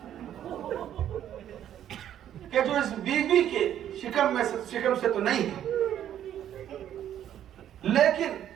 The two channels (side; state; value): left; quieter; 10.7 dB